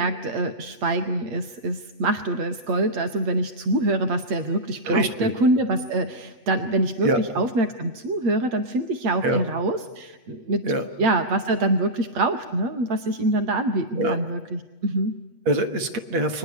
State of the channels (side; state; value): left; late; 8.2 ms